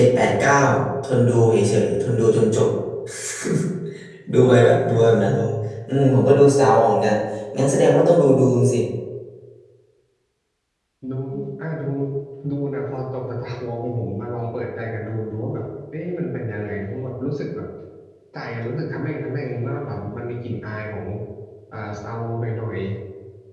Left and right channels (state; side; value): identical; both; correlation 1.00